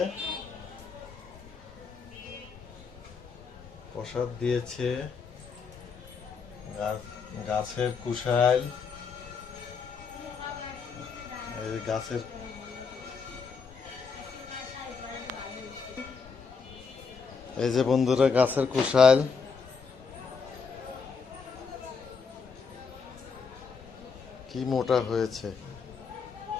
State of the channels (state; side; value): quieter; right; 5.5 dB